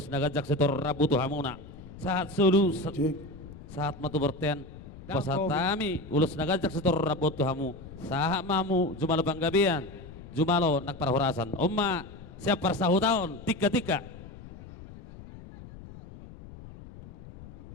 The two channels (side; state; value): left; noise; rumble, 16 dB below the sound